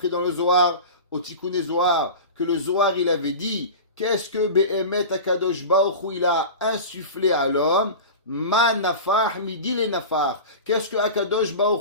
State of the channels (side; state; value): both; inverted; correlation -0.31